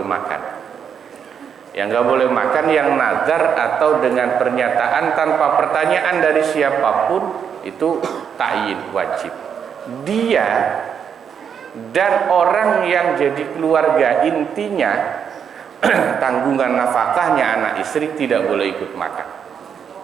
makan. Yang nggak boleh makan yang nazar atau dengan pernyataan tanpa pertanyaan dari siapapun, itu takyin wajib. Dia dan orang yang jadi keluarga intinya, tanggungan nafkahnya anak istri, tidak boleh ikut makan.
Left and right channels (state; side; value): quieter; left; 7.5 dB